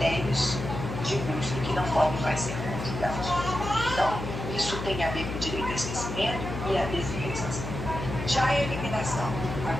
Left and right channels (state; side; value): noise; left; hum, 6 dB below the sound